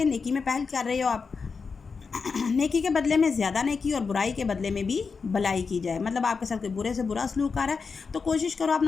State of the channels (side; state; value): right; quieter; 5.1 dB